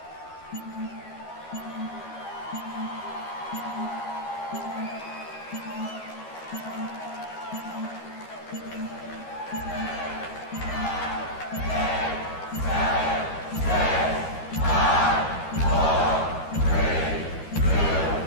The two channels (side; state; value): right; late; 12 ms